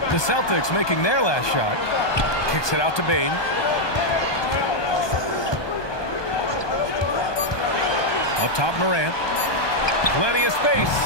The Celtics making their last shot. Kicks it out to Bain. Up top, Morant. Plenty of space.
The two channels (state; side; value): late; right; 1.2 ms